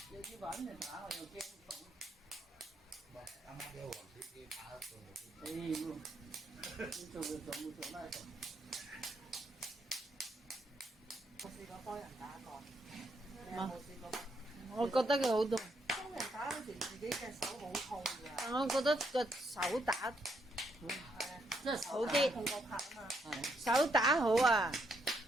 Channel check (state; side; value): normal; both; correlation 0.76